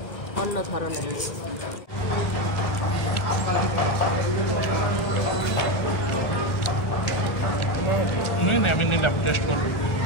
আমি নিলাম, টেস্ট করবো।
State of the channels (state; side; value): late; right; 1.4 ms